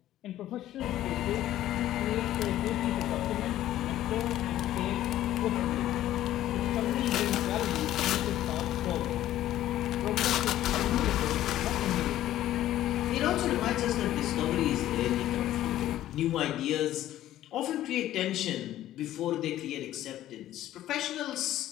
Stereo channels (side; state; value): right; quieter; 13.4 dB